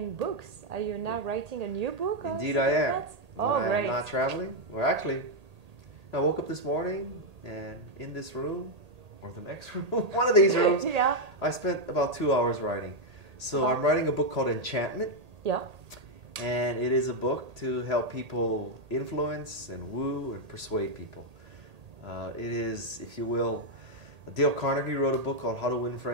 books, are you now writing a new book? Indeed I am. Oh, great. I'm not traveling. Well, actually, I woke up this morning and in this room, or the next room, one of these rooms, I spent about 2 hours writing. So I'm writing a book called Enchantment. Yeah. And it is a book to help people influence and woo and persuade people. It is, if you will, Dale Carnegie wrote a book called How to Win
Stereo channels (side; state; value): left; late; 1.8 ms